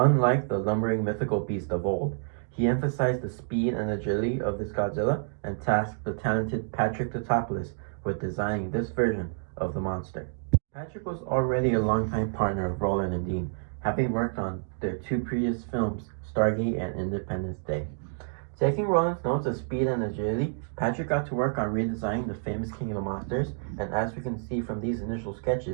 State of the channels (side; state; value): left; silent; digital silence